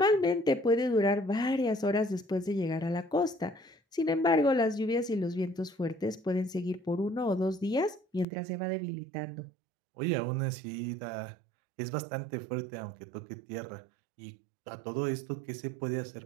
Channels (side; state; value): left; drops out; at 8.2 s